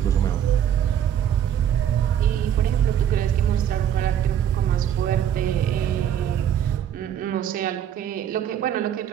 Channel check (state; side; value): quieter; left; 9.7 dB